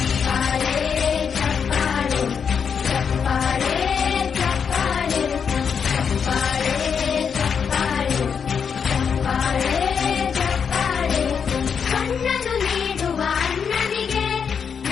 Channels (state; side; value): quieter; right; 6.7 dB